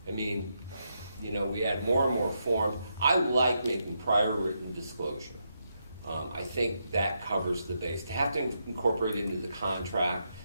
I mean, you know, we add more and more forms. I like making prior written disclosure. I think that covers the base. To have to incorporate it into the contract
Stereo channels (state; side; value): inverted; both; correlation -0.82